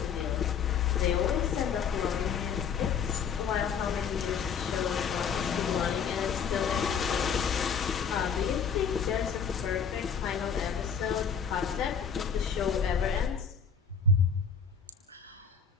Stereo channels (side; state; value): right; quieter; 6.6 dB